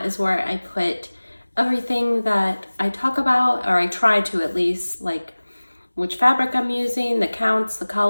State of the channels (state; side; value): inverted; both; correlation -1.00